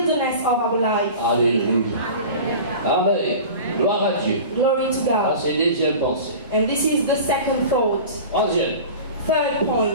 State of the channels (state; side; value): inverted; both; correlation -0.37